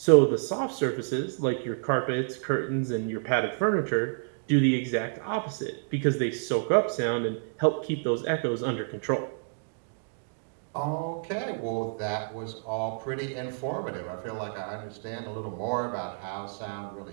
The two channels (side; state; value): left; silent; digital silence